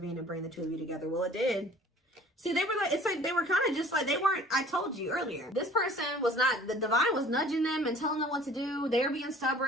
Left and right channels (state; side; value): normal; both; correlation 0.49